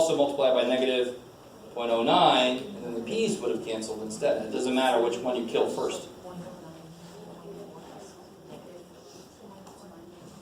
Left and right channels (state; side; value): identical; both; correlation 1.00